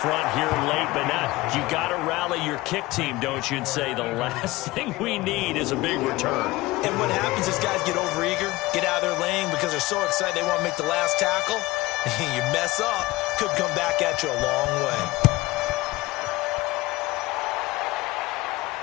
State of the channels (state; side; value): quieter; right; 19.9 dB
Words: here late, but not. You got to rally your kick team, don't you, and say the last thing we need is a big return. And what happens is guys get overeager, get out of their lane because they're so excited they want to make the last tackle. You mess up, could come back at you a long way.